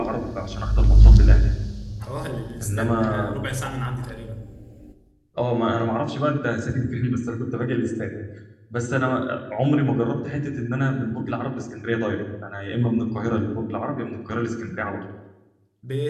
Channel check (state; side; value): identical; both; correlation 1.00